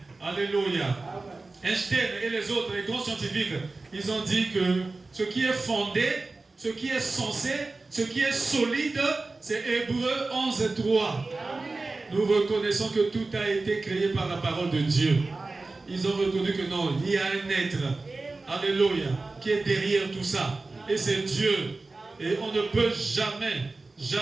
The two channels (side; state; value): left; quieter; 3.5 dB